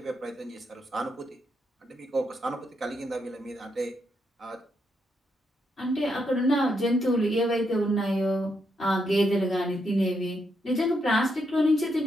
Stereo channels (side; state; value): both; normal; correlation 0.80